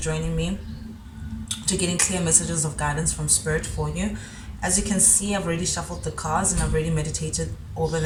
me to getting clear messages of guidance from Spirit for you. As you can see, I've already shuffled the cards and I've already meditated over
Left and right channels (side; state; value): both; identical; correlation 1.00